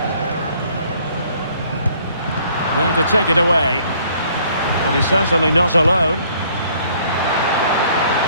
There to take it away. Well, he's certainly not alone.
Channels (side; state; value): both; inverted; correlation -0.61